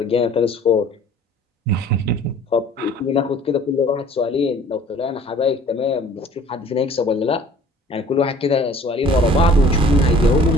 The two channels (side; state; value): both; normal; correlation 0.50